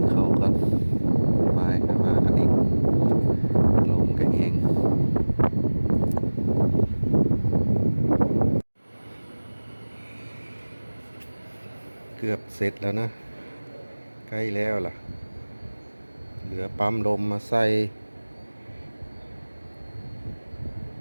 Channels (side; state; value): both; inverted; correlation -1.00